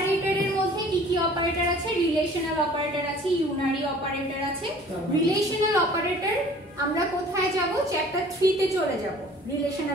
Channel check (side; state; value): both; normal; correlation 0.50